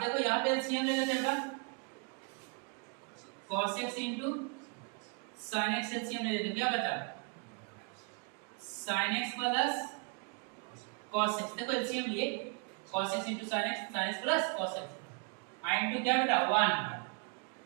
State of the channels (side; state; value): left; quieter; 34.6 dB